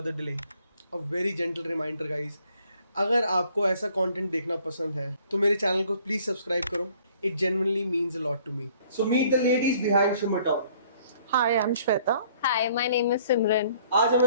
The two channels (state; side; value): inverted; both; correlation -0.59